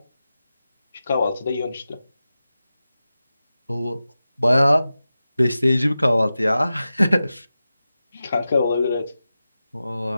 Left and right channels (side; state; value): both; inverted; correlation -0.93